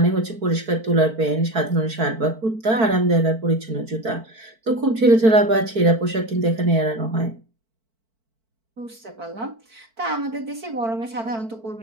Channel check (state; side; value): late; left; 4.5 ms